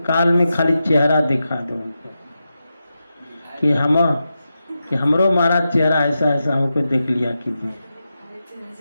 काल में खाली चेहरा दिखा दो उनको कि हमरो महाराज चेहरा ऐसा ऐसा हमको देख लिया कीजिए,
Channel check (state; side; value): inverted; both; correlation -0.89